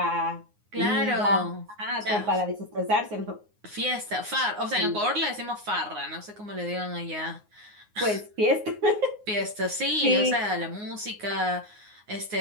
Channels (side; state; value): left; late; 9.6 ms